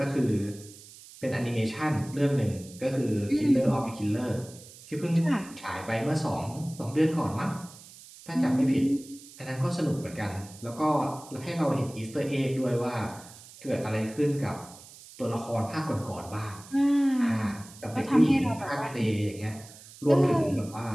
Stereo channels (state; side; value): noise; right; hiss, 19 dB below the sound